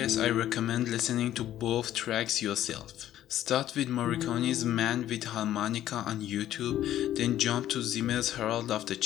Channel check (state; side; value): quieter; right; 12.4 dB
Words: I recommend listening to both tracks yourself. Start with Morricone's Man with Harmonica on YouTube, then jump to Zimmer's Herald of the